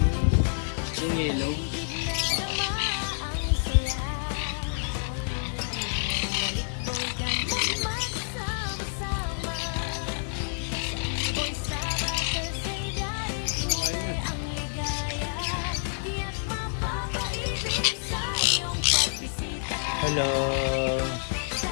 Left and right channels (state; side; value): silent; right; 59 dB below the other